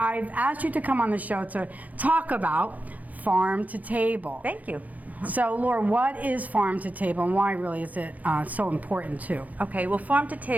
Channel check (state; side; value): late; left; 0.077 ms